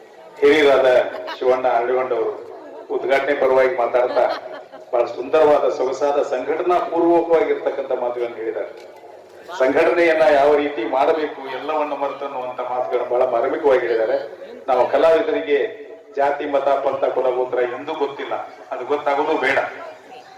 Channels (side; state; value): both; identical; correlation 1.00